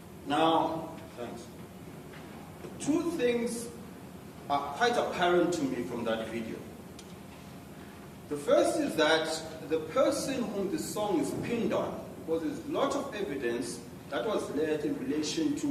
Now, thanks. 2 things are quite apparent to me from that video. The first is that the person whom the song is pinned on, because there's a lot of evidence that was led in relation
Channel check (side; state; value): both; identical; correlation 1.00